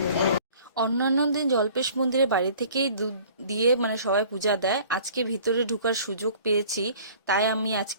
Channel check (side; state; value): both; inverted; correlation -0.49